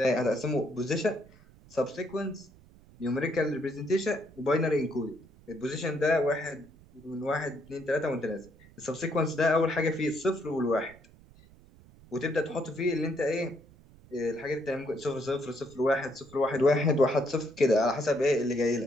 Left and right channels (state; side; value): noise; right; rumble, 25 dB below the sound